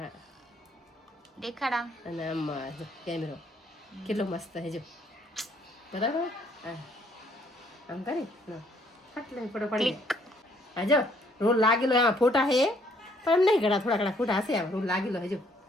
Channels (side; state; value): both; normal; correlation 0.65